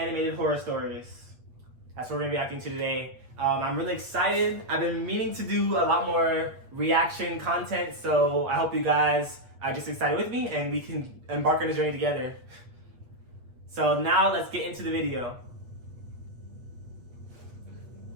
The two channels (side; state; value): left; late; 8.3 ms